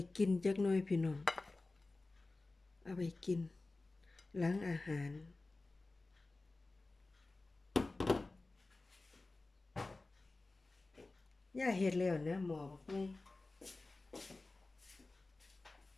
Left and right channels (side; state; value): right; quieter; 3.3 dB